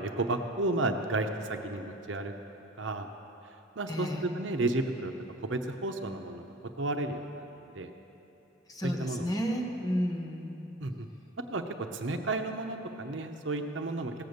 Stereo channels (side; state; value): both; normal; correlation 0.38